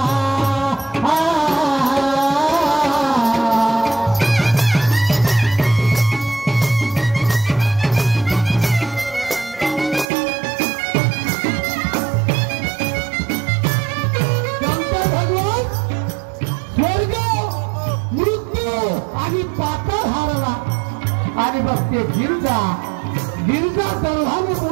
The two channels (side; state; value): left; drops out; at 10.1 s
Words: आणि पाताळ हारला. आणि बघ ते गिरजा गर्भाने